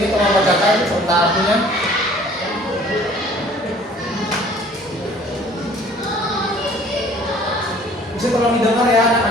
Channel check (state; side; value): normal; both; correlation 0.53